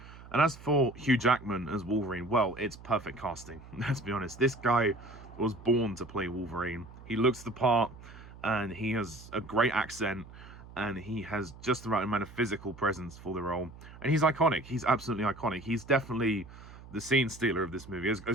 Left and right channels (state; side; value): noise; right; hum, 18 dB below the sound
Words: And as for Hugh Jackman as Wolverine, well, it's perfect casting. Let's be honest. This guy was born to play Wolverine. He looks the part, and he has a great accent, and he has just the right amount of physical presence for the role. And he's iconic. He's absolutely iconic. He's definitely the scene stealer of this movie. As